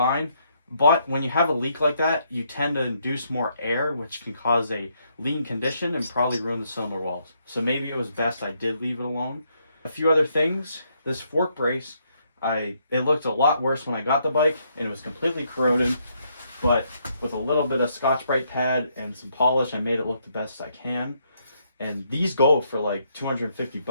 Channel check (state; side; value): inverted; both; correlation -0.74